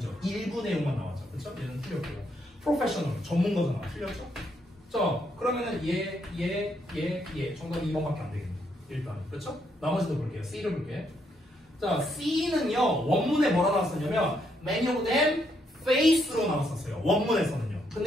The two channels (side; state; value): both; normal; correlation 0.75